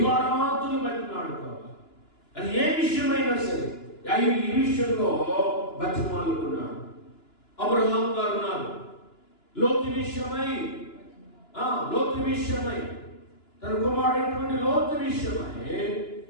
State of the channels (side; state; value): right; late; 2.9 ms